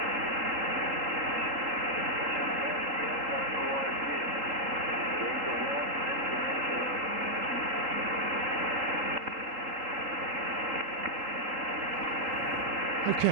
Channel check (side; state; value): left; late; 3.8 ms